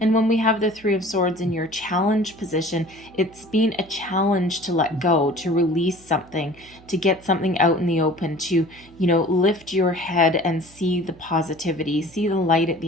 And when we have the Three of Swords in your challenge position, it's been a challenge to let go, to release something, to get something out in the open, to, lift your head and see the positivity, see the light at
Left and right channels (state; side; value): noise; right; hum, 25 dB below the sound